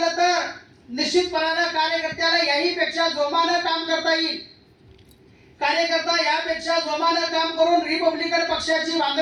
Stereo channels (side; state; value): both; identical; correlation 1.00